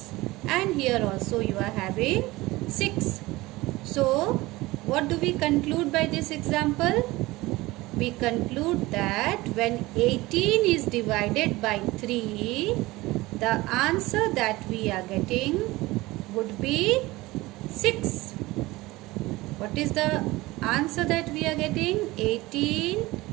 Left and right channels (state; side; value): quieter; left; 20.0 dB